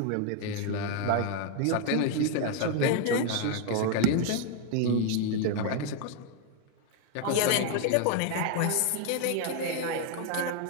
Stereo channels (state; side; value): different; both; correlation 0.01